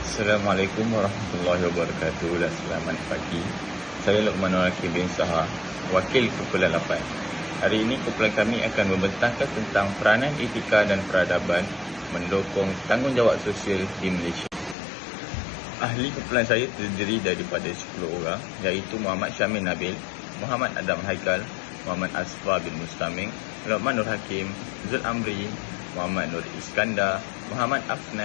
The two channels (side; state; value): right; drops out; at 14.8 s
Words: Assalamualaikum warahmatullahi wabarakatuh dan selamat pagi. Saya Luqmanul Hakim bin Saha, Wakil Kumpulan 8. Hari ini kumpulan kami akan membentangkan tentang peranan etika dan peradaban mendukung tanggungjawab sosial di Malaysia. Ahli kumpulan saya terdiri daripada 10 orang, iaitu Muhammad Syamil Nabil, Muhammad Adam Haikal, Muhammad Asfar bin Mustaming, Luqmanul Hakim, Zul Amri, Muhammad Nur Iskandar, Muhammad